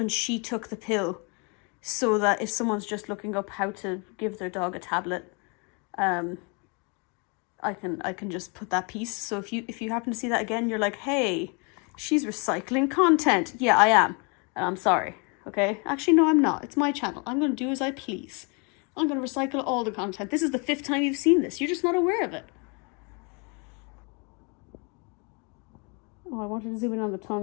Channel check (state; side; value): quieter; right; 33.1 dB